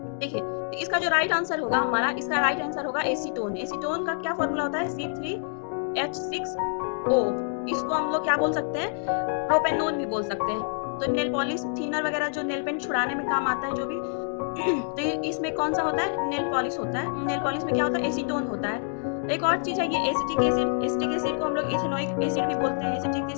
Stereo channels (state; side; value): silent; right; 60 dB below the other